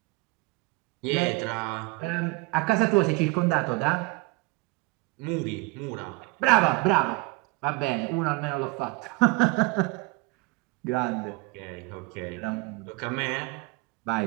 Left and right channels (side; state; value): left; quieter; 25.6 dB